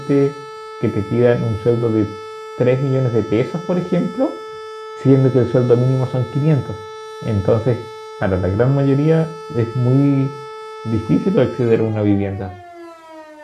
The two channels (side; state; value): both; identical; correlation 1.00